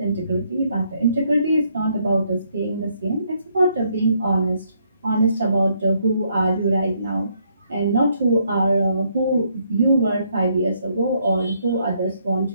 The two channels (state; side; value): inverted; both; correlation -0.71